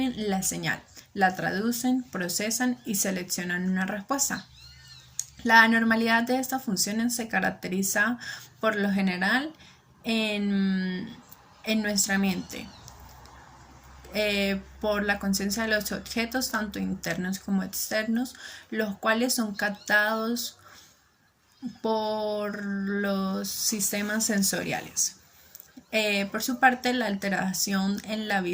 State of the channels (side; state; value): both; identical; correlation 1.00